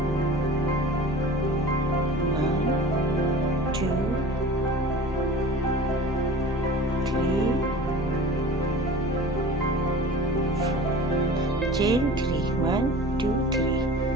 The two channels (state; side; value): normal; both; correlation 0.39